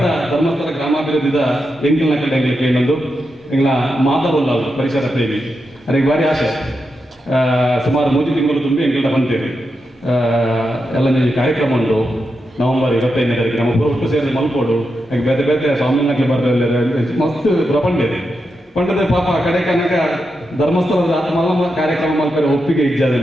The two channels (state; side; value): normal; both; correlation 0.86